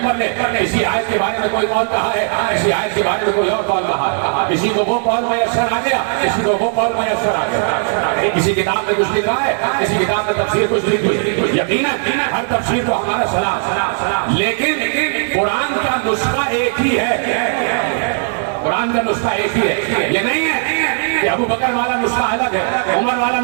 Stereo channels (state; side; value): silent; left; 58 dB below the other